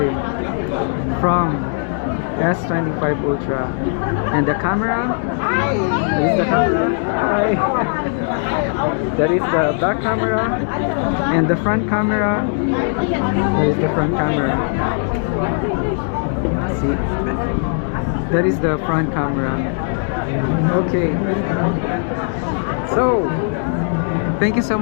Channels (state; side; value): silent; right; 57 dB below the other